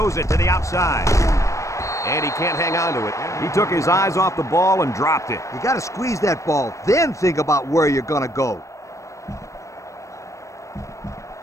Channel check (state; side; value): late; right; 0.15 ms